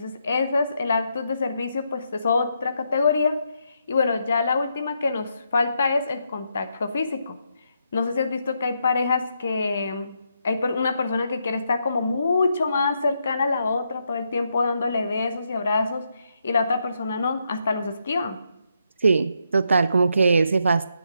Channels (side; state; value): both; inverted; correlation -0.80